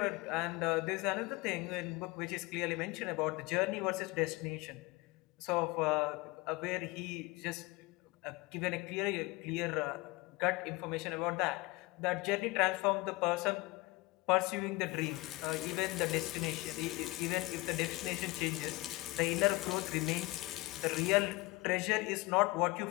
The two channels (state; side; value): quieter; right; 22.2 dB